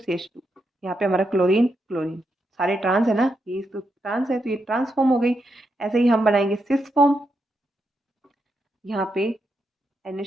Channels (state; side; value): normal; both; correlation 0.83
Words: यहाँ पे हमारा क्लोरीन क्लोरीन, सारे ट्रांस है ना, ये तो ट्रांस है तो ये ट्रांस फॉर्म हो गई। ऐसे ही हम बनाएंगे सिस फॉर्म, यहाँ पे